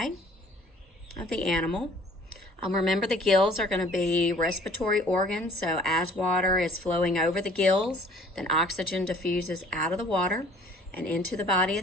of the animal. Remember, the gills are going to be respiratory organs. So as water is flowing over the gills, then oxygen diffuses out of the water and into the body of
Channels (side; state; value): both; normal; correlation 0.53